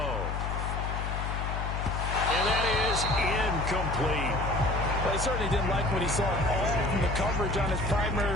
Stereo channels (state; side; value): noise; left; hum, 2 dB below the sound